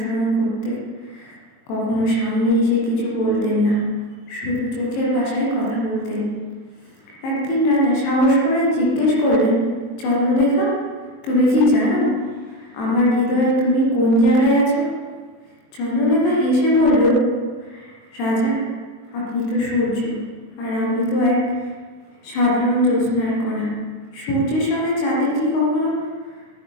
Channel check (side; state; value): right; late; 22 ms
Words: করতেন। কখনো সামনে এসে কিছু বলতেন না, শুধু চোখের ভাষায় কথা বলতেন। একদিন রাজা সাহস করে জিজ্ঞেস করলেন, চন্দ্রলেখা, তুমি কি জানো আমার হৃদয়ে তুমি কোন জায়গায় আছো? চন্দ্রলেখা হেসে বলল, রাজা, আপনি তো সূর্য, আর আমি তো এক সাধারণ জ্যোৎস্নার কণা। সূর্যের সঙ্গে চাঁদের কি কখনো